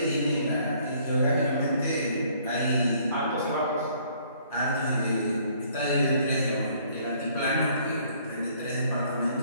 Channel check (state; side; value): inverted; both; correlation -0.61